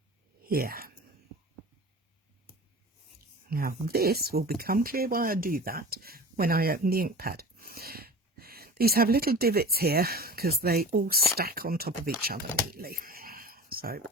here. Now this will become clear why I do that when I open the ink pad. These have little divots here because they all stack on top of each other neatly. So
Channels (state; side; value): normal; both; correlation 0.36